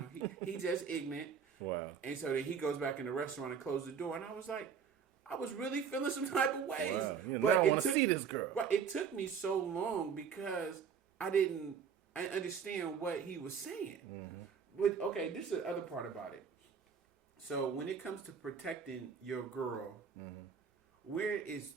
He just ignorant. Wow. And so then he goes back in the restaurant and closes the door. And I was like, I was really feeling some type of ways. Wow. But I want to see this girl. Right, it took me so long because I didn't understand what he was saying. Mm-hmm. But okay, this is the other part about it. So when it comes to protecting your girl, where is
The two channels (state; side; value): quieter; left; 6.8 dB